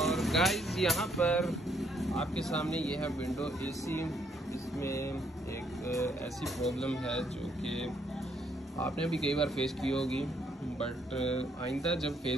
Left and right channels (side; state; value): both; normal; correlation 0.71